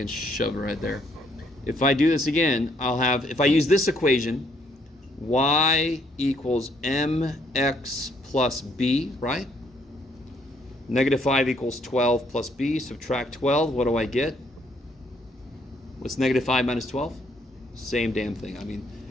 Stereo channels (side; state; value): both; normal; correlation 0.69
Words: shove it right there. If I do this again, I'll have, if I use this equation, y equals mx plus b, right? Negative 5 equals 12 plus b. Subtract 12. What do I get? What's negative 5 minus 12? Same damn thing. I mean,